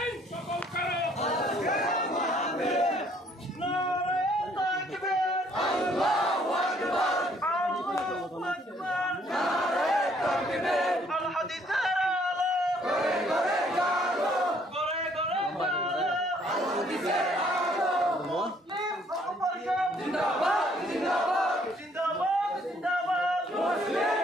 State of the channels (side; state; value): both; normal; correlation 0.64